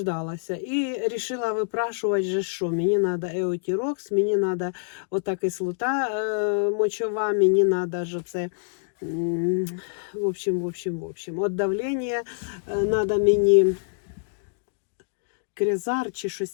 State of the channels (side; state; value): right; silent; digital silence